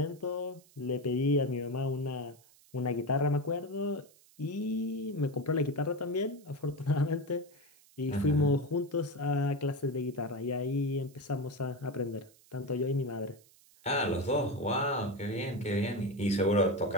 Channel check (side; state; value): right; noise; hiss, 27 dB below the sound